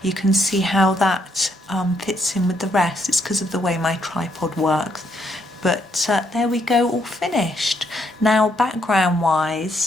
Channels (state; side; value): normal; both; correlation 0.74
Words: you can see how that fits in with the rest. It's because of the way my tripod works. But there we go, all finished. Now background